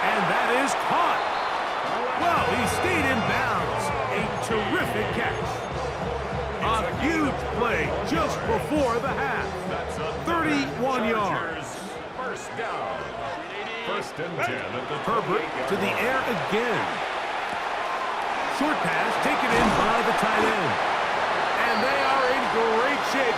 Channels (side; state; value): both; identical; correlation 1.00